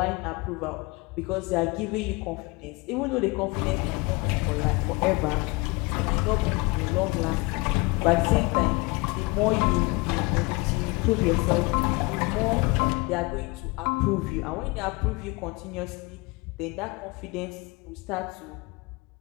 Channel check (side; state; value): right; quieter; 25.6 dB